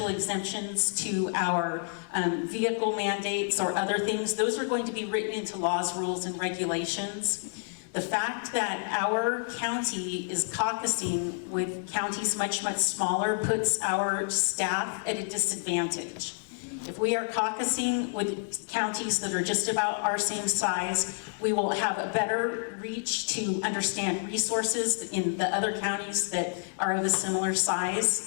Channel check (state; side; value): silent; right; digital silence